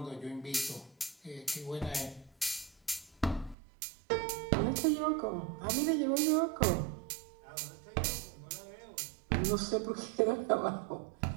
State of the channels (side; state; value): left; drops out; at 3.6 s